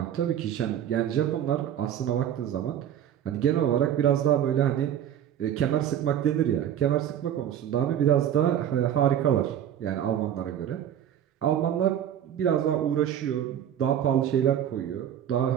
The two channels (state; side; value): quieter; left; 10.2 dB